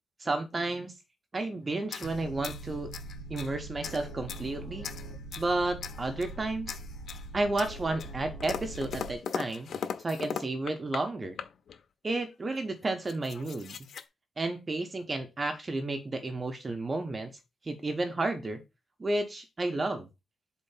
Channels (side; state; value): both; normal; correlation 0.88